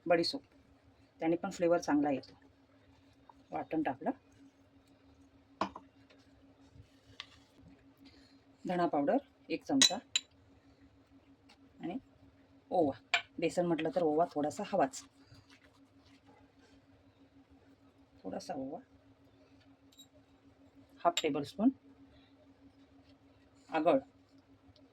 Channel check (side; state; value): both; identical; correlation 1.00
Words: बडी सोप. त्याने पण फ्लेवर चांगला येतो. वाटण टाकलं. धणा पावडर 1 चमचा आणि ओवा. बेसन म्हटलं तर ओवा थोडासा हवाच. थोडासा ओवा. 1/2 टेबलस्पून आगळ,